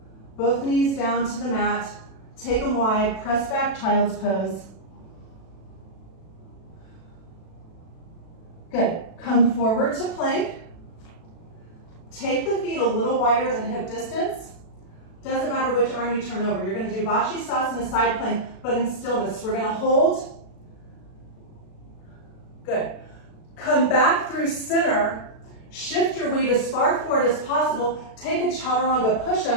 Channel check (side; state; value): right; late; 36 ms